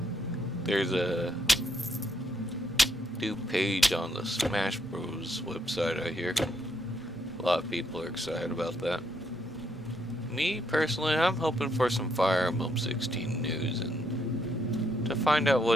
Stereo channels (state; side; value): normal; both; correlation 0.75